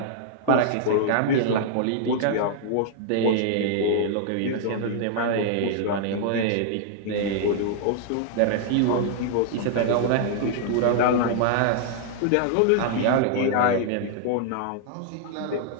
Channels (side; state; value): both; different; correlation -0.01